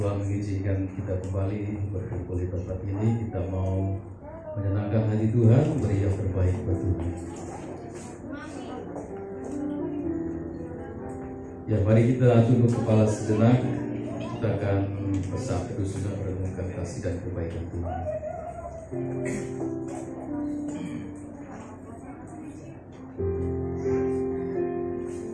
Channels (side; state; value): both; identical; correlation 1.00